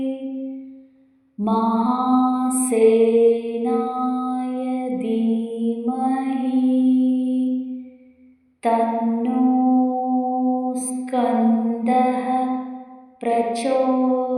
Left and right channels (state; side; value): identical; both; correlation 1.00